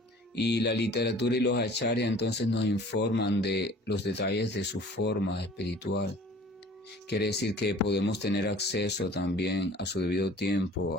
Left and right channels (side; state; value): both; normal; correlation 0.48